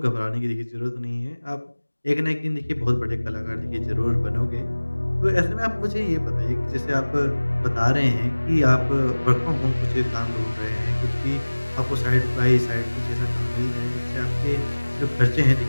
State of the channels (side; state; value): both; inverted; correlation -1.00